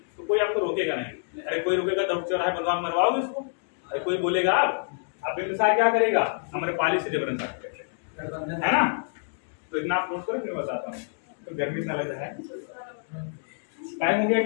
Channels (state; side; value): silent; right; digital silence